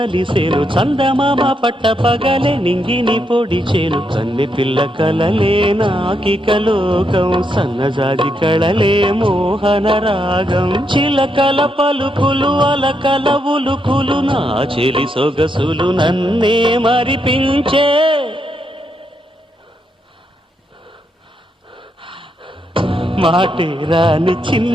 చందమామ పట్ట పగలే నింగిని పొడిచేను కన్నె పిల్ల కలలే నాకిక లోకం సన్నజాజి కళలే మోహన రాగం చిలకల పలుకులు అలకల ఉలుకులు నా చెలి సొగసులు నన్నే మరిపించే మాటే రాని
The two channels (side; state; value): both; normal; correlation 0.80